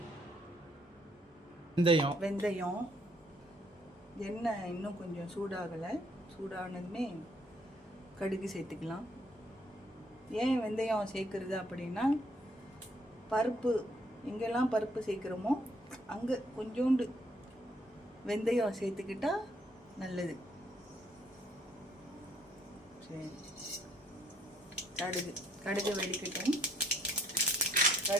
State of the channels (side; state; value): both; normal; correlation 0.67